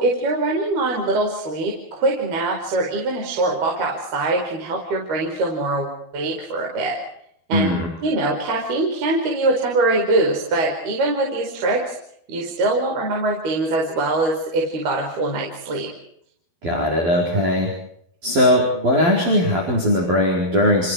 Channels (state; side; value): late; left; 12 ms